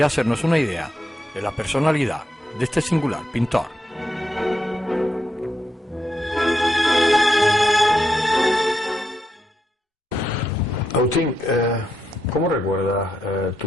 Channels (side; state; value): both; normal; correlation 0.83